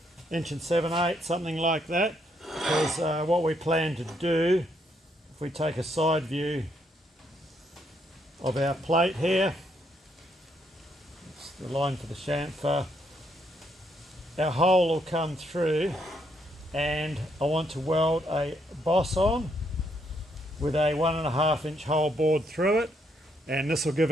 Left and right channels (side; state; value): both; normal; correlation 0.74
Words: inch, 1 7/8, something like that, because what we plan to do, if we take a side view of our plate here, it's the line for the chamfer, our hole will come through and I want to weld a boss on with a 1.5 inch hole bored through it, and this will give